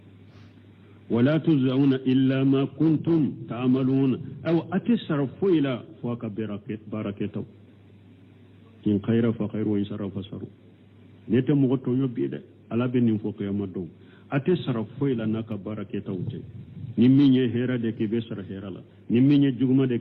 ولا تجزون إلا ما كنتم تعملون أو أتصرفوا إلى فوق بركته إن خير فخير وإن شر فشر نتمغتو يبيد على بنين فوق يوم أتصرفوا إلى نك بركته نميني هيرا دك بسر هيرا لا نميني جغما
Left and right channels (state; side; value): identical; both; correlation 1.00